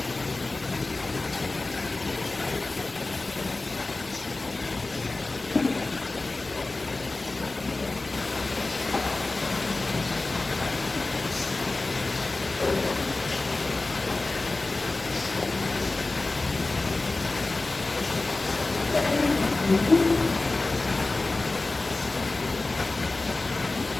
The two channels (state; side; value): quieter; right; 3.2 dB